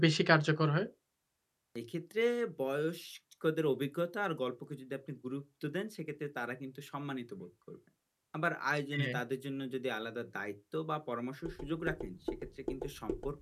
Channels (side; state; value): both; identical; correlation 1.00